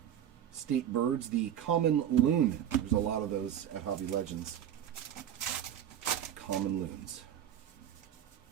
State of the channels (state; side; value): quieter; left; 10.2 dB